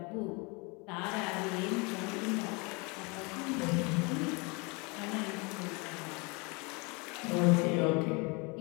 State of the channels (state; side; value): quieter; right; 29.4 dB